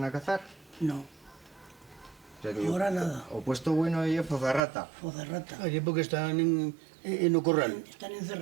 a cazar. No, O sea que ahora nada. o puesto bueno y Fozarrata. Fozarrata. Allí porque están en o corral. Están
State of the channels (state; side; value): drops out; left; at 4.6 s